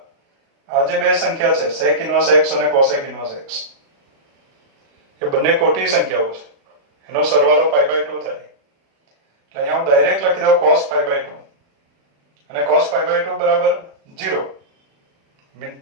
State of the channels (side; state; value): left; late; 36 ms